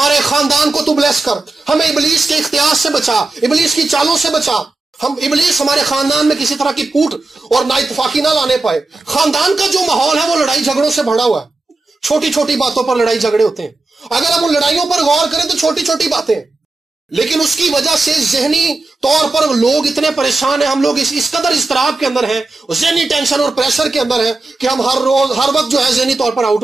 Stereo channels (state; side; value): quieter; left; 3.2 dB